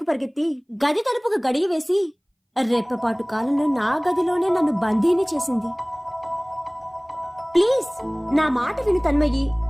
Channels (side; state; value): both; identical; correlation 1.00